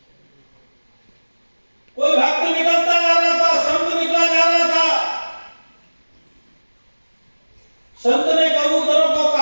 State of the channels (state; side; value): inverted; both; correlation -1.00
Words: कोई भक्त निकलता जा रहा था, संत निकला जा रहा था, संत ने कबूतरों को